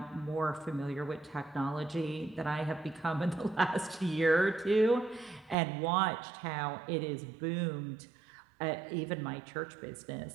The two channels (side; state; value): left; drops out; at 5.6 s